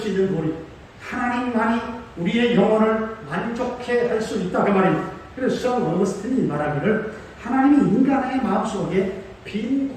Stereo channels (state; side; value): identical; both; correlation 1.00